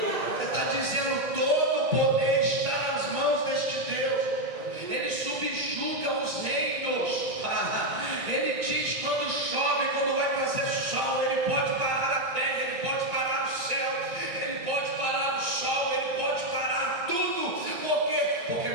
está dizendo, todo o poder está nas mãos deste Deus. Ele subjuga os reinos. Ele diz quando chove, quando vai fazer sol, Ele pode parar a terra, Ele pode parar o céu, Ele pode parar o sol, Ele pode parar tudo. Por quê? Porque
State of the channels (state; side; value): late; left; 2.1 ms